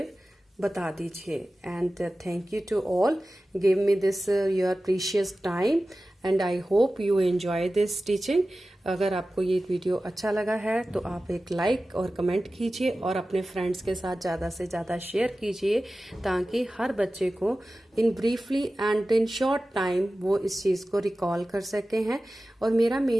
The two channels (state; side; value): normal; both; correlation 0.95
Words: बता दीजिए। And thank you to all, give me this your precious time, and I hope you enjoy this teaching. अगर आपको ये वीडियो अच्छा लगा है तो आप एक लाइक और कमेंट कीजिए, और अपने फ्रेंड्स के साथ ज़्यादा से ज़्यादा शेयर कीजिए, ताकि हर बच्चे को in briefly and in short time वो इस चीज़ को रिकॉल कर सके हैं। और मेरा